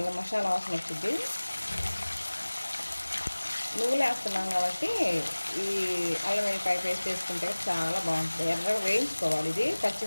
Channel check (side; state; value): both; inverted; correlation -1.00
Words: మసాలా వాసన వచ్చింది. నువ్వులు వేస్తున్నాం కాబట్టి ఈ అల్లం వెల్లిపాయ పేస్ట్ వేసుకుంటే చాలా బాగుంటుంది. ఎర్రగా వేయించుకోవాలి. ఇది